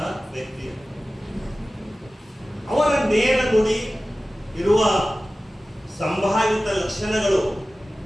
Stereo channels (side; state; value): both; normal; correlation 0.96